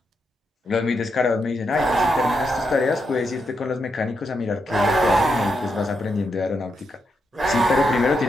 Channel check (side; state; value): both; normal; correlation 0.82